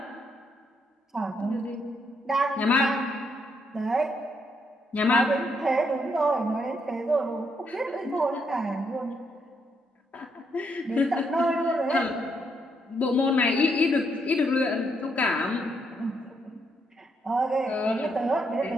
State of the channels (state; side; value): normal; both; correlation 0.76